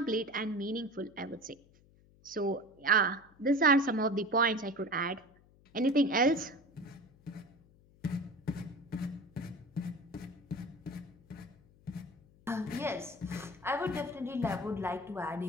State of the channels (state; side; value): noise; left; hum, 28 dB below the sound